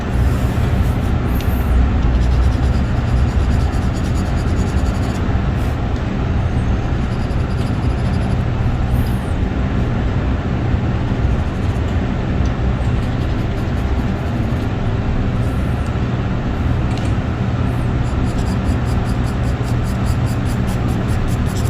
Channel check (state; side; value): identical; both; correlation 1.00